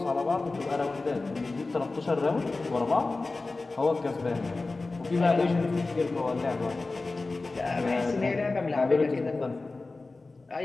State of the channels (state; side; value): quieter; right; 3.5 dB